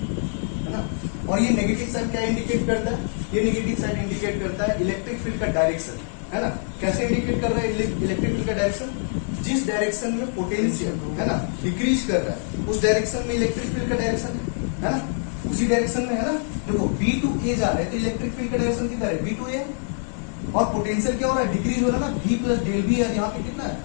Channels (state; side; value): silent; right; 62 dB below the other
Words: है ना। और ये नेगेटिव साइन क्या इंडिकेट करता है, ये नेगेटिव साइन इंडिकेट करता है इलेक्ट्रिक फील्ड का डायरेक्शन, है ना। कैसे इंडिकेट कर रहा है इलेक्ट्रिक फील्ड का डायरेक्शन, जिस डायरेक्शन में पोटेंशियल, है ना, डिक्रीज कर रहा है उस डायरेक्शन में इलेक्ट्रिक फील्ड का डायरेक्शन है ना, उसी डायरेक्शन में, है ना। देखो बी टू ए जा रहा है तो इलेक्ट्रिक फील्ड का डायरेक्शन कितना है बी टू ए, और पोटेंशियल क्या हो रहा है डिक्रीज हो रहा है ना, V प्लस डेल वी, यहाँ पे कितना है